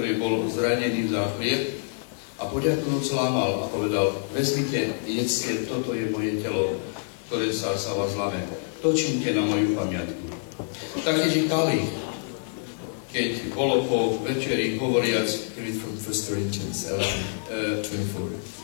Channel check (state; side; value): silent; right; 58 dB below the other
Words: bol zranený za chlieb, a poďakujúc lámal a povedal, vezmite, jedzte, toto je moje telo, ktoré sa vás láme. To čínte na moju pamiatku. Taktiež i kalich, keď bolo po večeri hovoriac, Read from 1 Corinthians 11:24.